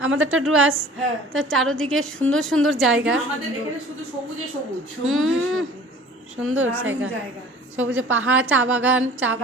আমাদেরটা ডুয়ার্স, হ্যাঁ, তো চারদিকে সুন্দর সুন্দর জায়গা, আমাদের এখানে শুধু সবুজে সবুজ, সুন্দর জায়গা, সবুজে পাহাড়, চা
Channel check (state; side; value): normal; both; correlation 0.46